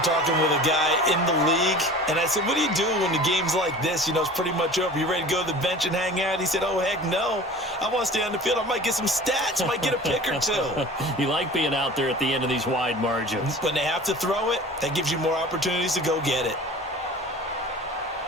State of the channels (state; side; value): normal; both; correlation 0.41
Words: talking with a guy in the league, and I said, what do you do when the game's like this? You know, it's pretty much over. You ready to go to the bench and hang out? He said, oh, heck no. I want to stay on the field. I might get some stats. I might get a pick or two. You like being out there at the end of these wide margins. When they have to throw it, that gives you more opportunities to go get it.